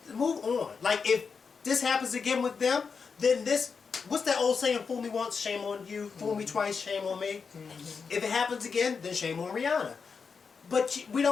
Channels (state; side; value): quieter; right; 5.5 dB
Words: Move on. Like, if this happens again with them, then what's that old saying? Fool me once, shame on you. Fool me twice, shame on me. If it happens again, then shame on Rihanna. But